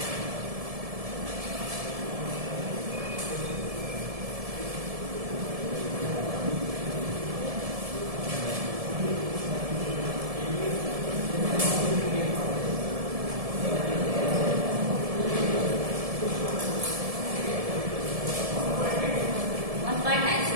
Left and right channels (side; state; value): left; late; 1.7 ms